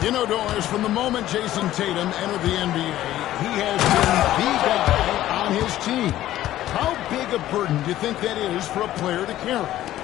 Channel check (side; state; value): right; quieter; 13.8 dB